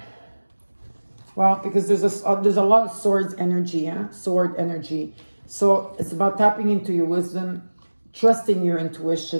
Well, because there's a lot of swords energy, yeah? Sword energy. So it's about tapping into your wisdom, trusting your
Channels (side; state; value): both; inverted; correlation -1.00